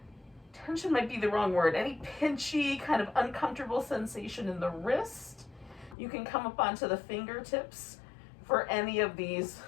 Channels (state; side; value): drops out; right; at 6.0 s